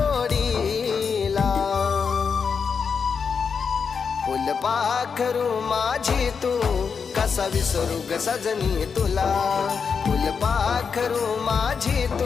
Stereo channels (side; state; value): right; quieter; 5.9 dB